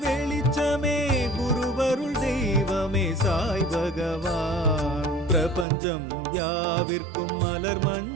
வெளிச்சமே குருவருள் தெய்வமே சாய் பகவான். பிரபஞ்சம் யாவிற்கும் மலர்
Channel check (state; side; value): drops out; left; at 5.7 s